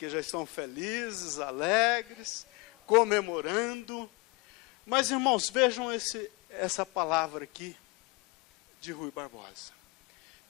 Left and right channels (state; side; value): quieter; right; 26.5 dB